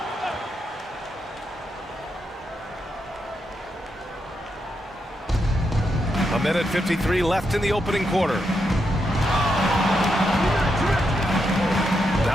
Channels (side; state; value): both; normal; correlation 0.83